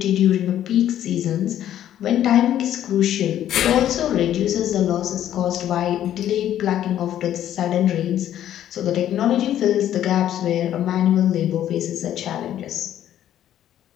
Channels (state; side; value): quieter; right; 11.4 dB